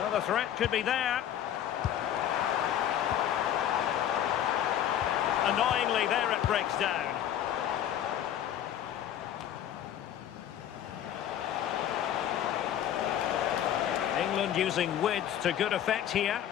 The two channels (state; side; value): quieter; right; 10.7 dB